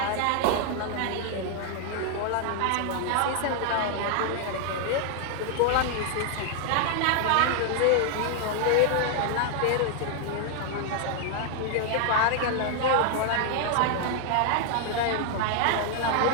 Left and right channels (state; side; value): different; both; correlation 0.00